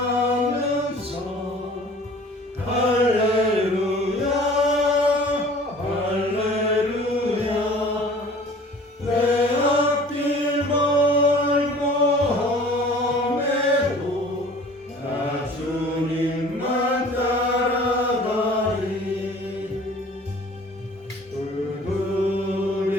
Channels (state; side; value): normal; both; correlation 0.47